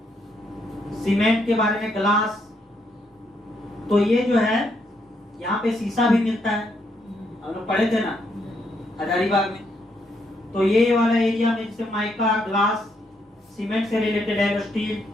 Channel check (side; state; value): both; normal; correlation 0.76